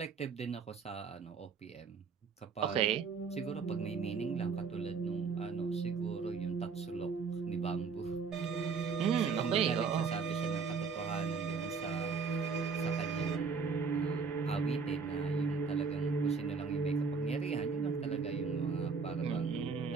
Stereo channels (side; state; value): left; quieter; 5.3 dB